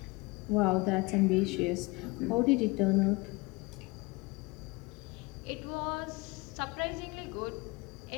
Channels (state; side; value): quieter; right; 24.7 dB